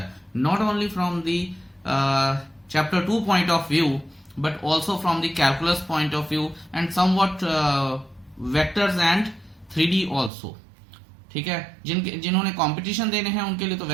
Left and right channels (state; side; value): drops out; left; at 10.3 s